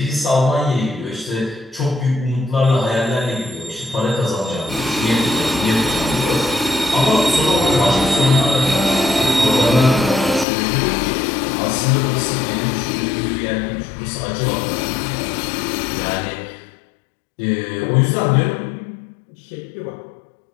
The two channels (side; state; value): right; drops out; at 10.5 s